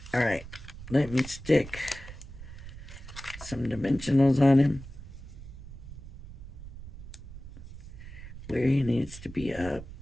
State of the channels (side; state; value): right; noise; rumble, 13 dB below the sound